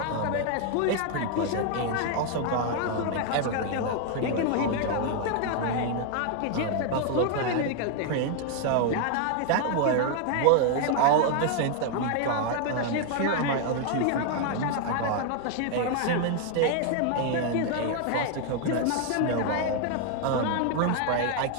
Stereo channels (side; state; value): both; different; correlation 0.00